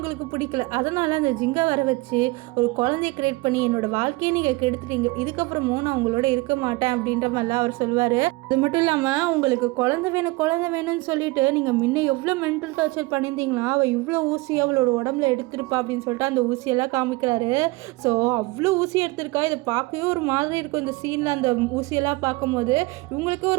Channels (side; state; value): left; quieter; 22.9 dB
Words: பிடிக்கல, அதனால அந்த ஜிங்கை வர வச்சு ஒரு குழந்தைய கிரியேட் பண்ணி என்னோட வாழ்க்கையை நீங்கள் கெடுத்துட்டீங்க, இதுக்கப்புறமும் நான் உங்களோட இருக்க மாட்டேன் அப்படின்ற மாதிரிலாம் அவர் சொல்லுவார். அது மட்டும் இல்லாமல் உங்களுக்கு குழந்தை வேணும்னு சொல்லிட்டு நீங்கள் முன்ன எவ்வளோ மென்டல் டார்ச்சர் பண்ணியிருந்தீங்களா, அவள் இவ்வளோ ஊசி அவளோட உடம்புல எடுத்திருப்பா அப்படின்னு சொல்லிட்டு அந்த ஊசியெல்லாம் காமிக்கிறாரு. ஸோ அவ்வளோ ஊசி எடுத்திருக்கா, இதை பார்க்கவே ஒரு மாதிரி இருக்கும். இந்த சீனில் அந்த ஊசியெல்லாம் பார்க்கும்போது இவங்களுக்கு